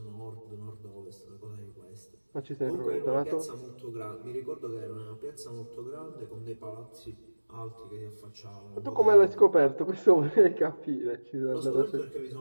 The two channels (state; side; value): inverted; both; correlation -1.00